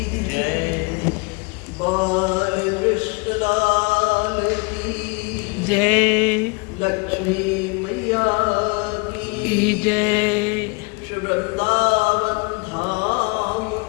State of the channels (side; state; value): right; quieter; 30.3 dB